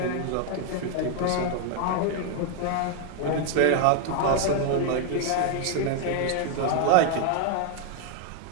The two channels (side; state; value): both; different; correlation 0.00